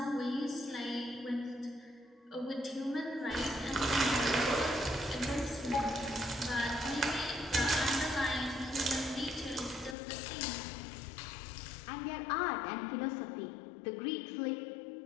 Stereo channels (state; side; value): drops out; right; at 10.0 s